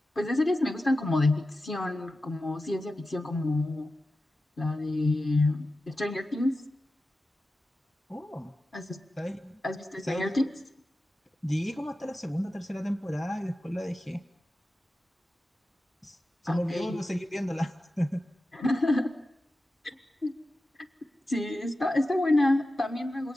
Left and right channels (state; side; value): normal; both; correlation 0.93